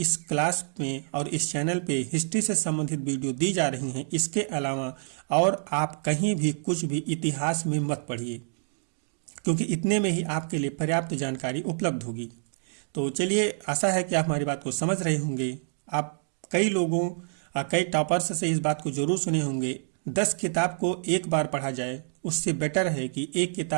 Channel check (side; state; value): left; silent; digital silence